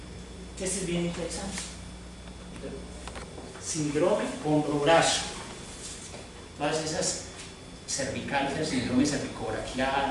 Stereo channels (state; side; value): identical; both; correlation 1.00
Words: Este es bien interesante. Síndrome hombro-brazo. Todas esas cervicales, el síndrome